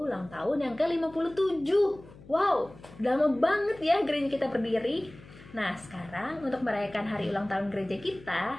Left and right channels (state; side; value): noise; left; hum, 20 dB below the sound